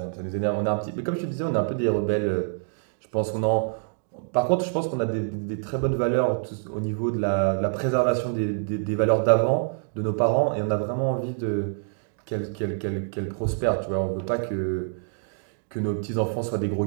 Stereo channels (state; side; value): silent; left; digital silence